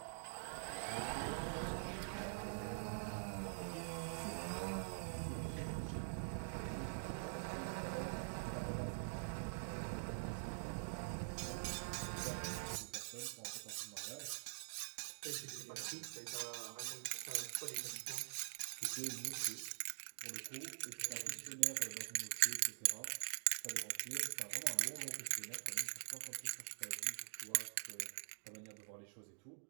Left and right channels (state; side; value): silent; left; digital silence